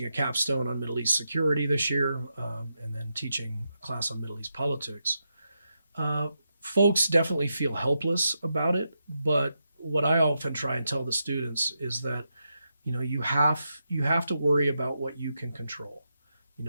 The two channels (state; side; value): inverted; both; correlation -0.85